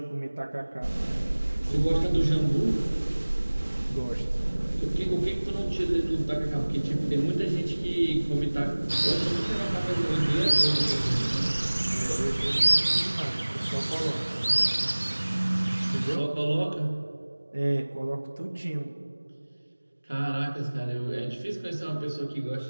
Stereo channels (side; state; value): both; inverted; correlation -1.00